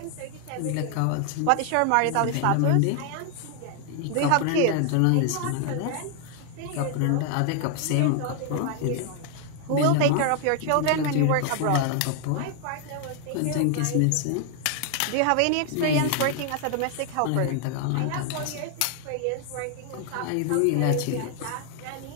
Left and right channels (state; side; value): different; both; correlation 0.00